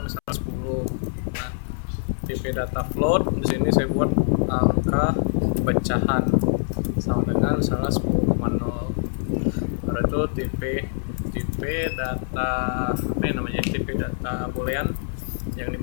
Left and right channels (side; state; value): right; silent; 62 dB below the other